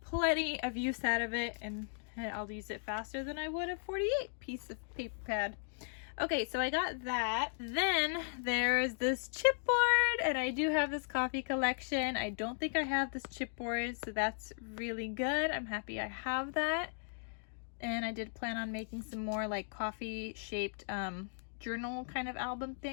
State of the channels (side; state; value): right; silent; digital silence